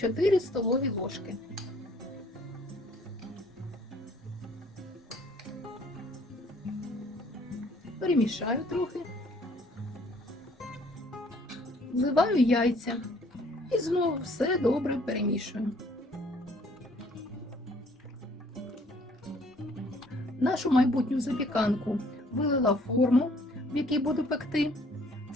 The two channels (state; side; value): normal; both; correlation 0.59